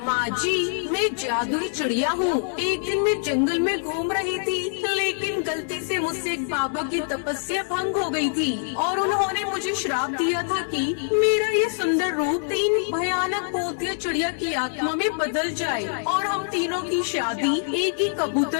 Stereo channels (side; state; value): right; silent; digital silence